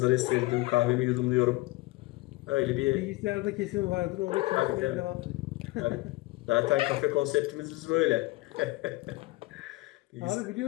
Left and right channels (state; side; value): quieter; right; 21.2 dB